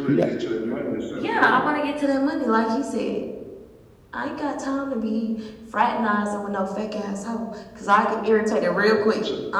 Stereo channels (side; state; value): both; identical; correlation 1.00